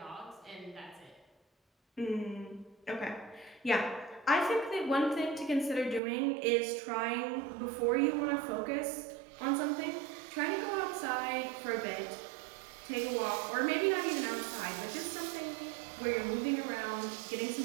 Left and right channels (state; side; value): drops out; left; at 6.0 s